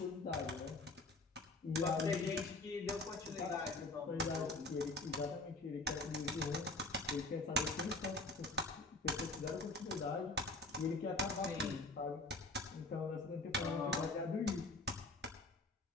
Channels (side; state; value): right; quieter; 3.1 dB